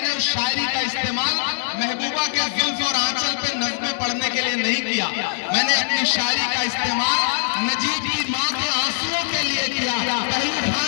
उस शायरी का इस्तेमाल महबूबा के जुल्फ और आंचल पे नज़्में पढ़ने के लिए नहीं किया। मैंने अपनी शायरी का इस्तेमाल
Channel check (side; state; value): right; silent; digital silence